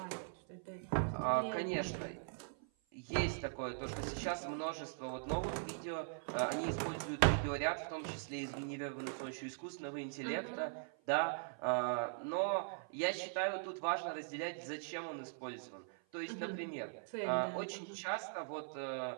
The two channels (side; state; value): left; silent; 50 dB below the other